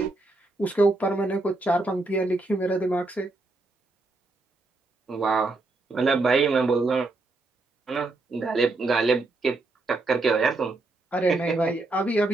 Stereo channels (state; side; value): quieter; left; 3.1 dB